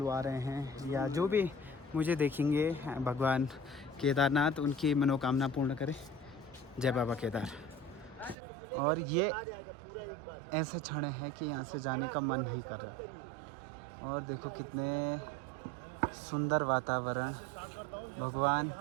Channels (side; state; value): left; drops out; at 8.3 s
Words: आ रहे हैं या जो भी मुझे देखेंगे, भगवान केदारनाथ उनकी मनोकामना पूर्ण करे। जय बाबा केदार। और ये ऐसे क्षण है कि यहाँ से जाने का मन नहीं कर रहा। और देखो कितने सुंदर वातावरण, भगवान